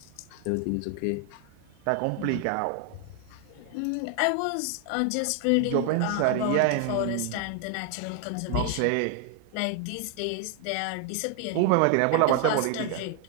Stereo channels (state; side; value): different; both; correlation 0.00